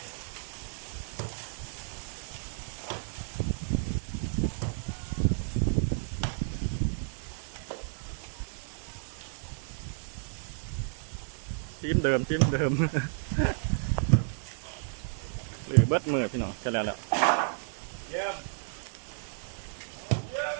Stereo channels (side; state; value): left; silent; 56 dB below the other